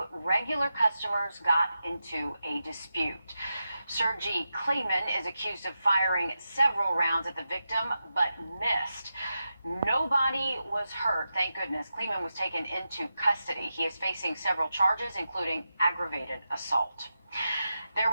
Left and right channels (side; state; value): both; inverted; correlation -0.89